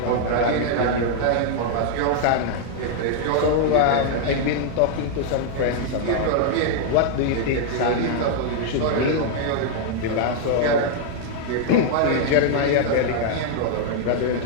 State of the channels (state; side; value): different; both; correlation 0.00